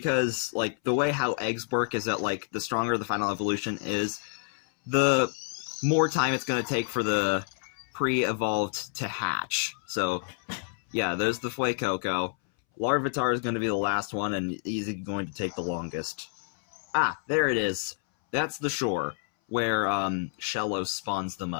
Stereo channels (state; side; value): silent; right; 59 dB below the other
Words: like, the way how eggs work is that, like, the stronger the final evolution is, the more time it's going to take for the pre-evolved to hatch. So, yeah, there's the Fuecoco. Larvitar is going to be the last one, and he's going to take the longest. Ah, there it is. That's the shore, where, Shellos spawns the